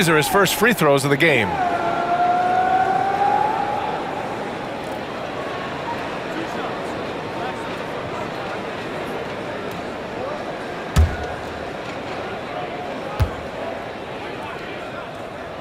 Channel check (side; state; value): both; identical; correlation 1.00